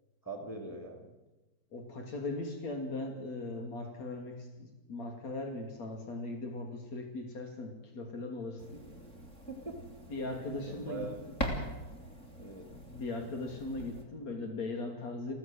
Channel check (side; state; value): right; late; 3.6 ms